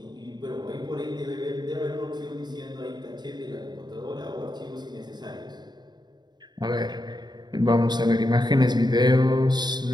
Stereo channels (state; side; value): late; left; 0.20 ms